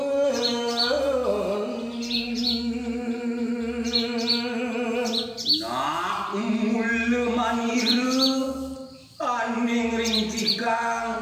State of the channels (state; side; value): identical; both; correlation 1.00